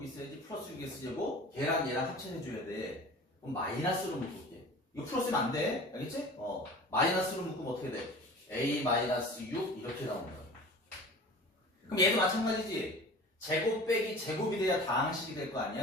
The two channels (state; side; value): normal; both; correlation 0.40